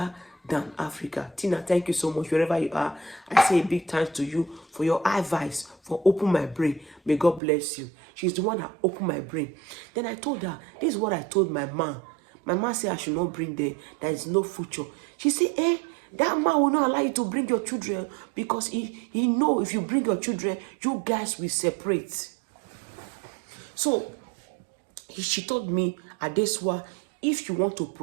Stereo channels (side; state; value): left; drops out; at 7.4 s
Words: than Africa. Tina, thank you so much wherever you are. I say a big thanks to you for your advice, for opening my brain. May God bless you. She's the one that opened my brain. Then I told her, this is what I told my mom. My mom said I should not bring them. There is no future. She said, that man will not allow you to bring your children because he know if you bring your children, you guys will separate. So she told me, Adeswa, if you want to